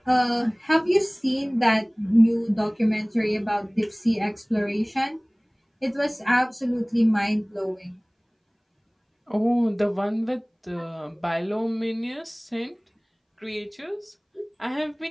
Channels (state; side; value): identical; both; correlation 1.00